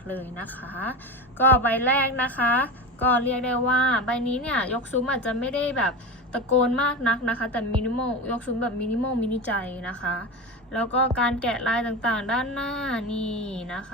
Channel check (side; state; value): both; normal; correlation 0.23